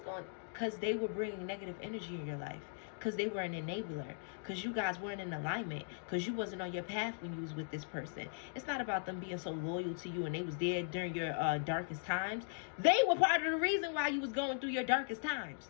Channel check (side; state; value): right; silent; digital silence